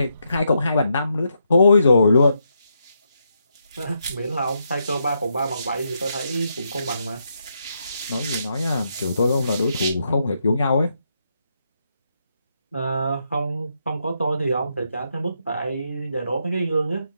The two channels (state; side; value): inverted; both; correlation -0.80